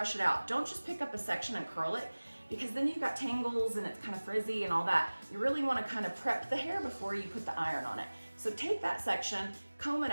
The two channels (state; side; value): inverted; both; correlation -1.00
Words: it out. Don't just pick up a section and curl it, because then you've got tangles and it's kind of frizzy and all that. You really wanna kind of prep the hair before you put the iron on it. So take that section, comb it